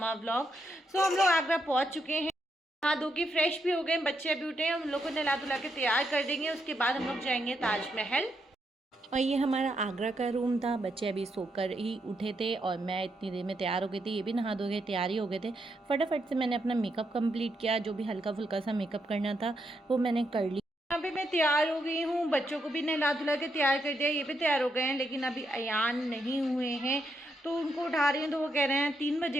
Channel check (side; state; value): both; normal; correlation 0.80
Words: vlog. So हम लोग आगरा पहुंच चुके हैं। नहा धो के फ्रेश भी हो गए, बच्चे अभी उठे हैं। हम लोग को नहला धुला के तैयार कर देंगे, उसके बाद हम लोग जाएंगे ताजमहल। और ये हमारा आगरा का रूम था। बच्चे अभी सोकर ही उठे थे और मैं इतनी देर में तैयार हो गई थी। ये भी नहा धो के तैयार ही हो गए थे। फटाफट से मैंने अपना मेकअप कंप्लीट किया, जो भी हल्का फुल्का सा मेकअप करना था वो मैंने कर लिया। यहाँ पे मैं तैयार हो गई हूँ, बच्चों को भी नहला धुला के तैयार कर दिया। ये भी तैयार हो गए हैं, लेकिन अभी अयान नहीं हुए हैं तो उनको उठा रही हूँ। तो वो कह रहे हैं 3